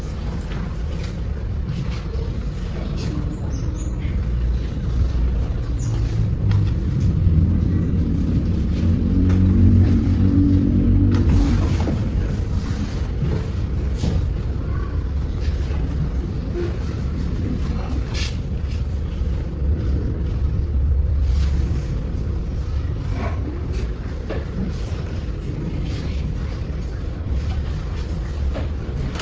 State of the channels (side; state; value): both; identical; correlation 1.00